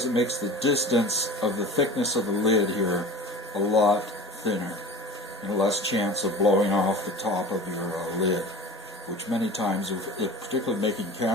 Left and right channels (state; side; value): normal; both; correlation 0.37